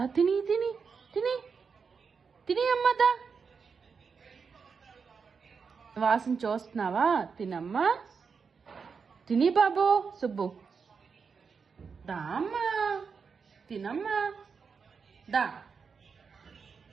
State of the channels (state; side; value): quieter; left; 5.6 dB